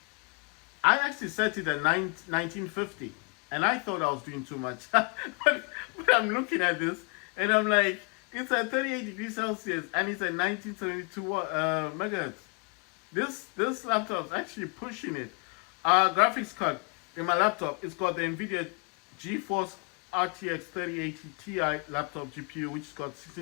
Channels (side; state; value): right; quieter; 36.0 dB